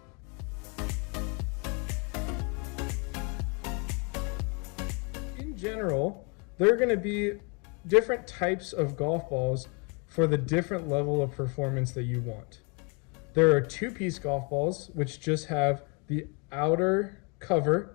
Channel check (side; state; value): right; quieter; 33.4 dB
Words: In general, there are going to be different types of golf balls for the different level of performance that you want. There are 2-piece golf balls, which just have the outer